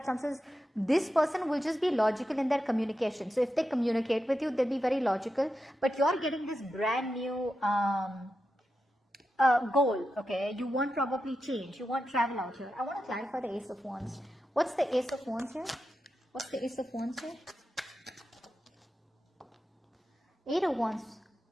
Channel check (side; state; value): both; normal; correlation 0.89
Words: this person will just be logical in their communication. So if they communicate with you, they'll be very logical. But you're getting this brand new goal, okay? You want probably change. You want travel out here. I want to clarify the Ace of Wands. What's the Ace of Wands here? What's the Ace of Wands here? 8 of Wands.